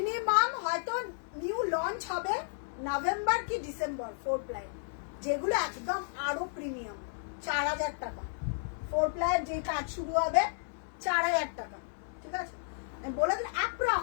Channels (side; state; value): right; silent; digital silence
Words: হয়তো নিউ লঞ্চ হবে নভেম্বর কি ডিসেম্বর 4 প্লাই, যেগুলো একদম আরো প্রিমিয়াম। 4000 টাকা 4 প্লাইয়ের যে কাজ শুরু হবে, 4000 টাকা। ঠিক আছে, আমি বলে দিলাম,